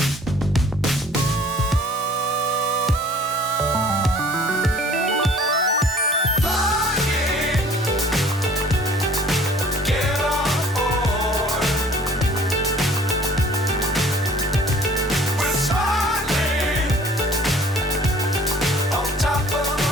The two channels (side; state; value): both; normal; correlation 0.52